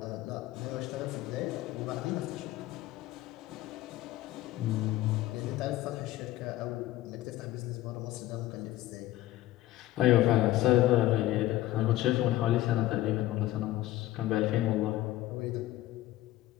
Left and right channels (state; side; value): quieter; right; 15.5 dB